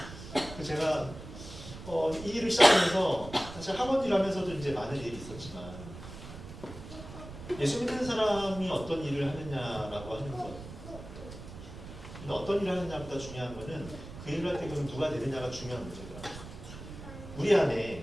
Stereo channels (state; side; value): noise; right; rumble, 13 dB below the sound